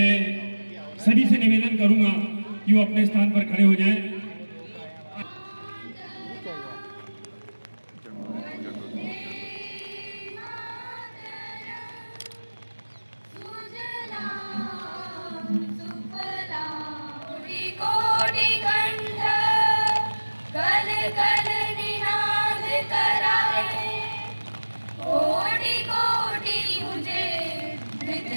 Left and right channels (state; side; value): inverted; both; correlation -1.00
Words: सभी से निवेदन करूंगा कि वो अपने स्थान पर खड़े हो जाएं।